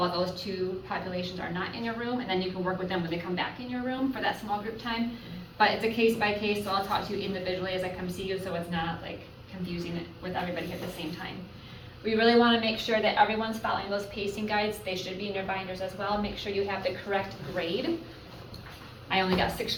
those two populations are not in your room, and then you can work with them when they come back in your room for that small group time. But it's a case by case, so I'll talk to you individually as I come see you, so it's not like confusing it with everybody at the same time. We really want to make sure that everyone's following those pacing guides. They should be in your binders as well. Make sure you have the correct grade. I only got 6th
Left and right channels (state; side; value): identical; both; correlation 1.00